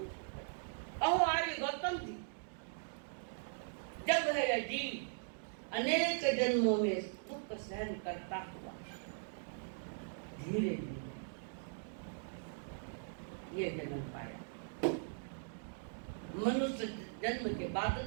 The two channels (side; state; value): left; silent; digital silence